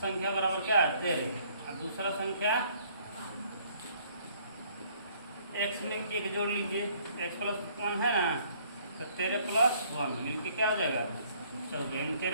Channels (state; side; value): inverted; both; correlation -0.62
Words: बराबर क्या है? 13 और दूसरा संख्या x में 1 जोड़ लीजिए, x प्लस 1 है ना, तो 13 प्लस 1 मिलके क्या हो जाएगा? 14।